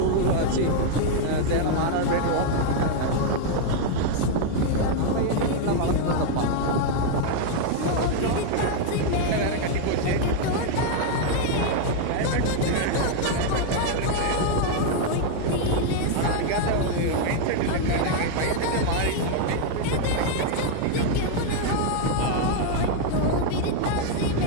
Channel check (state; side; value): different; both; correlation 0.00